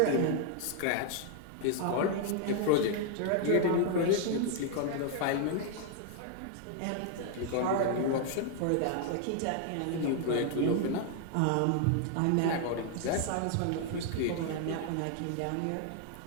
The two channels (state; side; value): different; both; correlation 0.00